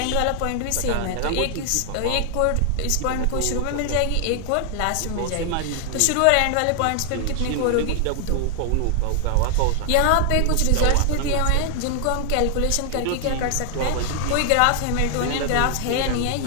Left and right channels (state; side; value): different; both; correlation 0.00